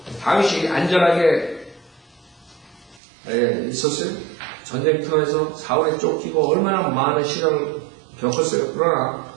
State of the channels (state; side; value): drops out; left; at 3.0 s